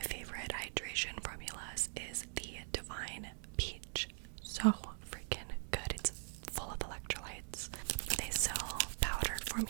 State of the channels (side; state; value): left; silent; 50 dB below the other